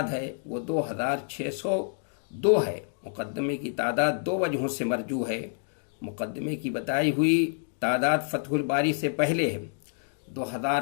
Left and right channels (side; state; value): right; silent; digital silence